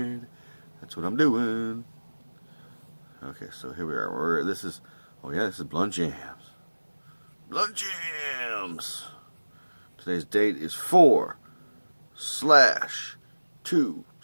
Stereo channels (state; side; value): inverted; both; correlation -1.00